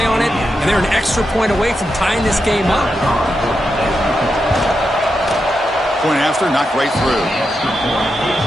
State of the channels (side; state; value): both; normal; correlation 0.86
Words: on it, and they're an extra point away from tying this game up. Point after, knocked right through.